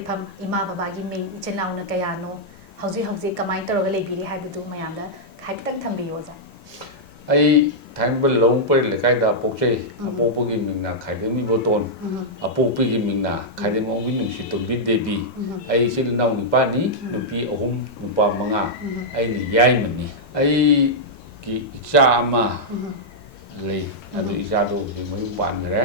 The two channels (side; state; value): both; normal; correlation -0.08